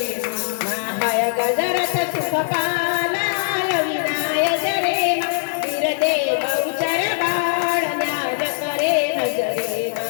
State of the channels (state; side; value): silent; right; 64 dB below the other